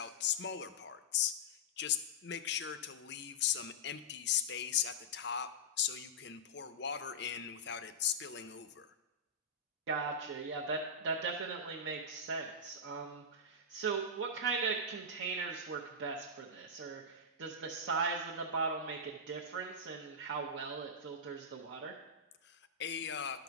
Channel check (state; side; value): normal; both; correlation -0.11